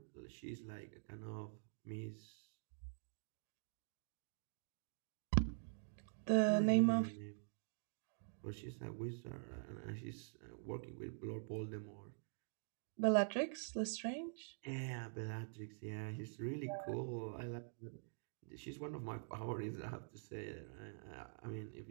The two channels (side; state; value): left; silent; digital silence